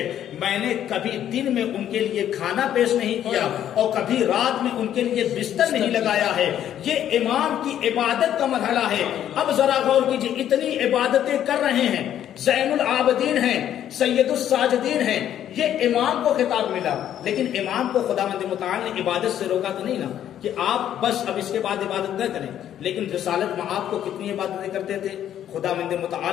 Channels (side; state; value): right; quieter; 10.7 dB